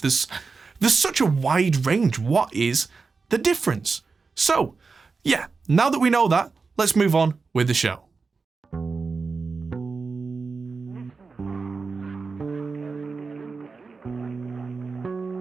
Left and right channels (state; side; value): quieter; left; 4.5 dB